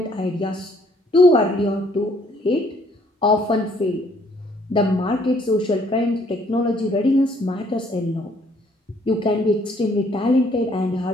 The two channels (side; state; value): both; normal; correlation 0.64